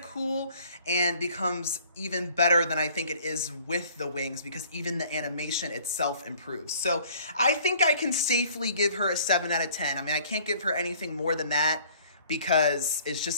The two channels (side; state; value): both; inverted; correlation -0.55